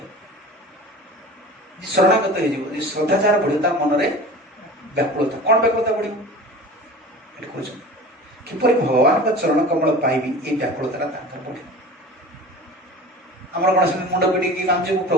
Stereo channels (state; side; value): normal; both; correlation 0.37